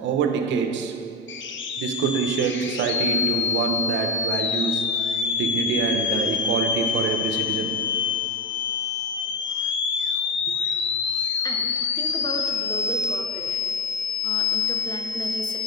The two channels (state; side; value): normal; both; correlation 0.14